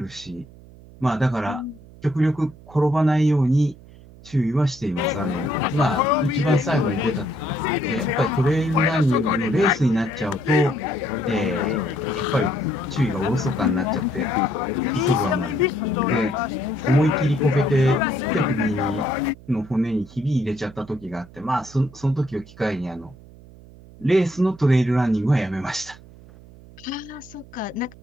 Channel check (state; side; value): noise; right; hum, 21 dB below the sound